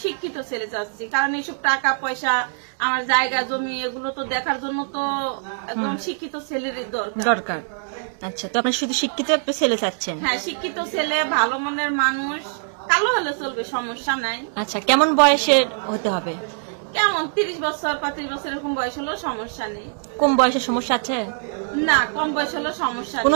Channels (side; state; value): left; silent; digital silence